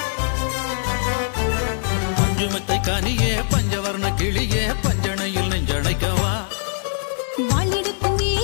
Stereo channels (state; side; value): silent; right; digital silence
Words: பஞ்சுமெத்தை கனியே பஞ்சவர்ண கிளியே பஞ்சனையில் நெஞ்சணைக்கவா வாளெடுக்கும்